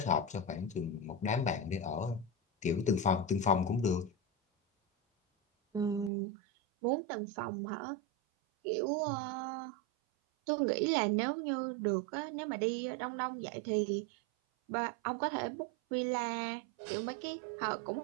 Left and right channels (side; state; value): left; drops out; at 6.1 s